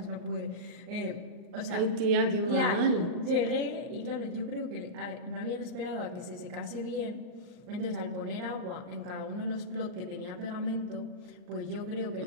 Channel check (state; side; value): late; left; 39 ms